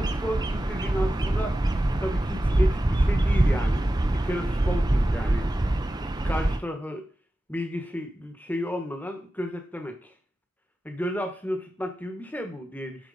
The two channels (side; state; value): both; normal; correlation 0.93